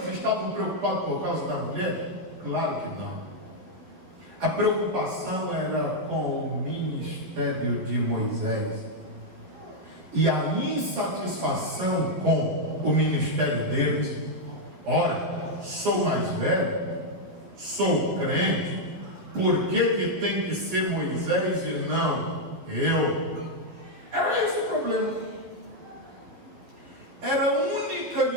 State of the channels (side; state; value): left; late; 12 ms